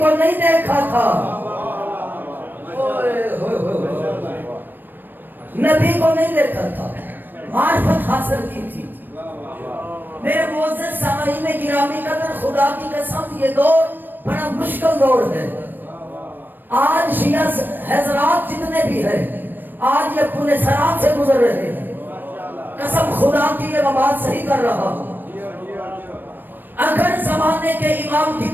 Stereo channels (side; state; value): left; late; 0.093 ms